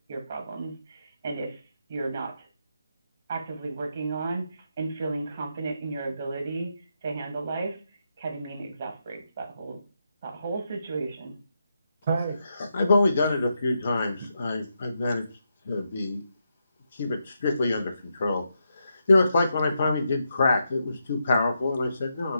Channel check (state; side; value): inverted; both; correlation -0.83